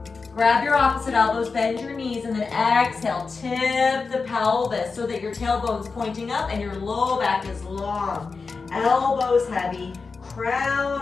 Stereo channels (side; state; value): right; quieter; 4.5 dB